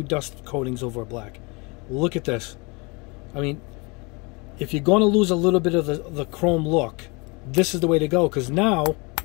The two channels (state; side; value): quieter; right; 28.2 dB